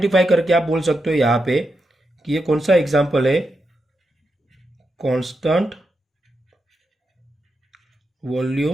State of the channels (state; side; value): normal; both; correlation 0.86